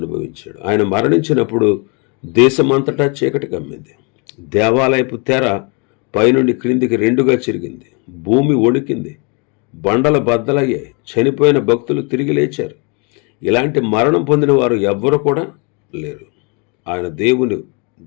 అనుభవించాడు. ఆయన మరణించినప్పుడు దేశమంతటా చీకటి కమ్మింది. దేవాలయపు తెర పైనుండి క్రిందికి రెండుగా చిరిగింది. భూమి వణికింది. బండల బద్దలయ్యాయి. చనిపోయిన భక్తులు తిరిగి లేచారు. ఇలాంటి మరణం పొందిన వారు ఎవ్వరు కూడా లేరు. ఆయన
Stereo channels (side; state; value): right; quieter; 33.0 dB